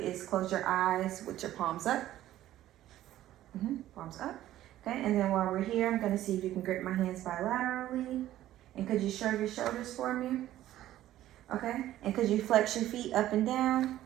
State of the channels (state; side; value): quieter; left; 13.7 dB